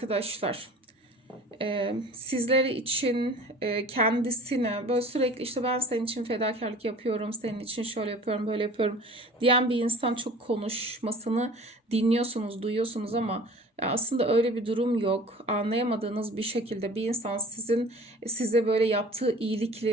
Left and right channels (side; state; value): both; normal; correlation 0.44